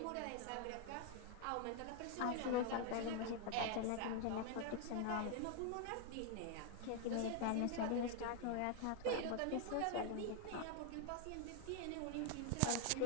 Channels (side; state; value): both; different; correlation 0.01